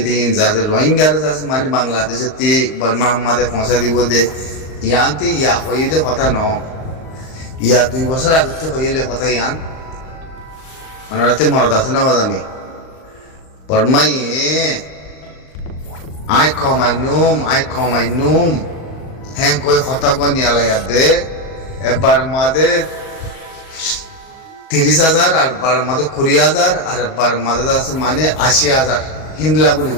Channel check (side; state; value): right; late; 38 ms